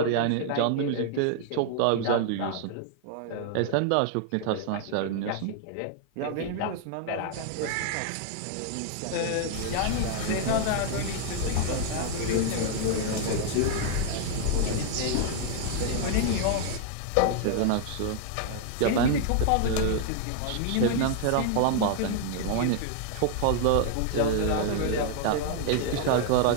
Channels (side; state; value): both; different; correlation 0.00